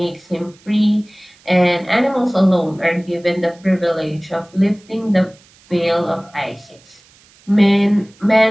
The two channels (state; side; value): noise; right; hiss, 29 dB below the sound